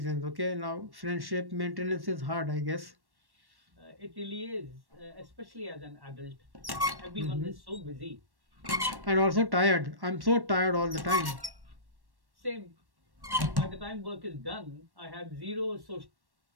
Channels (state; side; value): late; left; 1.1 ms